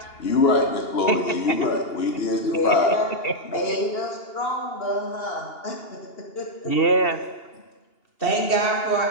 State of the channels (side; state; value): right; late; 2.7 ms